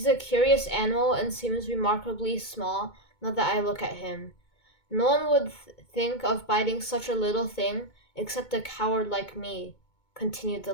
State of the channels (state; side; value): late; right; 2.2 ms